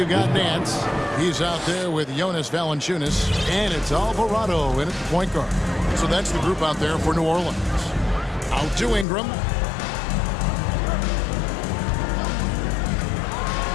got Nance. He's out there with Jonas Valanciunas, and it's Alvarado in at the point guard. So that's the group out there for New Orleans. Out to Ingram.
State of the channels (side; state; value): right; drops out; at 9.1 s